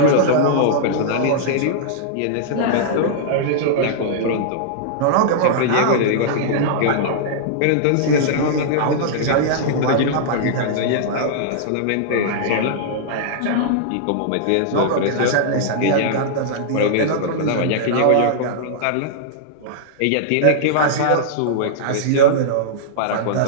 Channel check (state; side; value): different; both; correlation -0.02